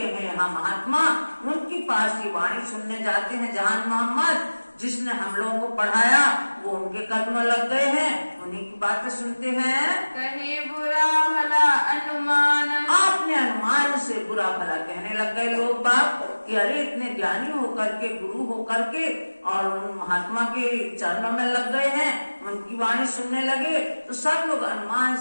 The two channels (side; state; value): both; inverted; correlation -1.00